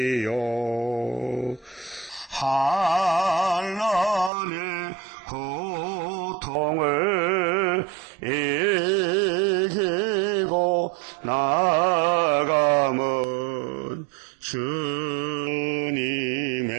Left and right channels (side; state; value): left; drops out; at 4.3 s